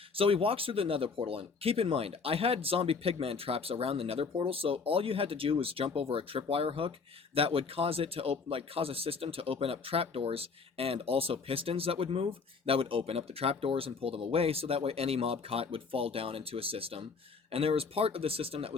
So he walks through the nether portal, and keep in mind, I had zombie pigman traps around the nether portal, so all you had to do was jump over a tripwire hook that would cause it to cause a system to open up trapdoors, and also pistons that would move, that would open up the trapdoors and pull them away, so that way any mob caught would fall down into a system. And there was part of the system that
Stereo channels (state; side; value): quieter; right; 4.9 dB